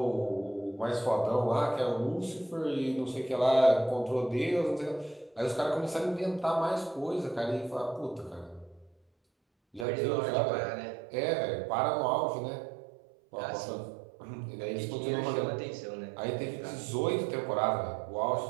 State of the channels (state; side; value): drops out; left; at 9.9 s